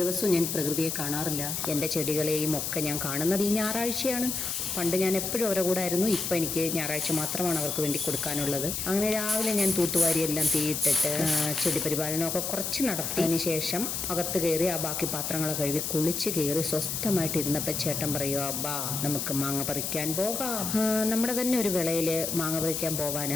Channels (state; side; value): noise; left; hiss, 2 dB below the sound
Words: ദിവസവും ഞാൻ പ്രകൃതിയെ കാണാറില്ല. എൻ്റെ ചെടികളെയും ഒക്കെ ഞാൻ കാണുന്നത് ഈ ഞായറാഴ്ചയാണ്. പണ്ട് ഞാൻ എപ്പോഴും അവരുടെ കൂടെ ആയിരുന്നു. ഇപ്പം എനിക്ക് ഞായറാഴ്ച മാത്രമാണ് അവർക്ക് വേണ്ടി കൊടുക്കാനുള്ളത്. അങ്ങനെ രാവിലെ ഞാൻ തൂത്തുവാരി എല്ലാം തീയിട്ടിട്ട് ചെടി പരിപാലനമൊക്കെ കുറച്ച് നടത്തിയതിന് ശേഷം അകത്ത് കയറി ആ ബാക്കി പാത്രങ്ങളൊക്കെ കഴുകി കുളിച്ച് കയറി സ്വസ്ഥമായിട്ടിരുന്നപ്പോൾ ചേട്ടൻ പറയുക, അബ്ബാ നമുക്ക് മാങ്ങ പറിക്കാൻ പോകാം. നമ്മുടെ തന്നെ ഒരു വിളയിൽ മാങ്ങ പറിക്കാൻ പോവാൻ,